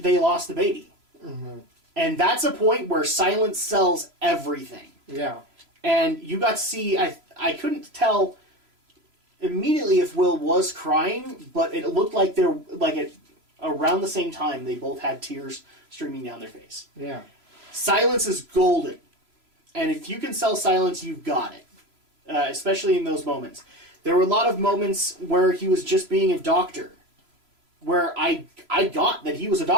lost the baby. Mm-hmm. And that's a point where silence sells everything. Yeah. And you got to see, I couldn't tell immediately if Will was crying, but it looked like around the same time, they both had tears streaming down their face. Yeah. Silence is golden. And if you can sell silence, you've got it. Especially in those moments. There were a lot of moments where he was just being a doctor. Where I got that he was a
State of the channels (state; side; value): late; left; 3.0 ms